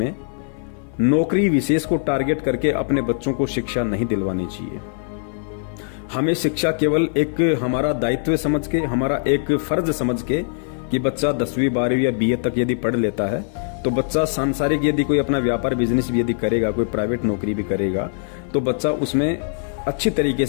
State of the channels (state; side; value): silent; right; 56 dB below the other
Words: नौकरी विशेष को टारगेट करके अपने बच्चों को शिक्षा नहीं दिलवानी चाहिए। हमें शिक्षा केवल एक हमारा दायित्व समझ के, हमारा एक फर्ज समझ के कि बच्चा 10वीं 12वीं या बीए तक यदि पढ़ लेता है तो बच्चा सांसारिक यदि कोई अपना व्यापार बिजनेस भी यदि करेगा, कोई प्राइवेट नौकरी भी करेगा, तो बच्चा उसमें अच्छी तरीके